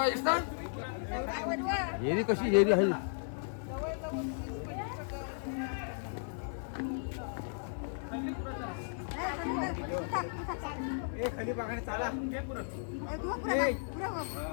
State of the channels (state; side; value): silent; right; 54 dB below the other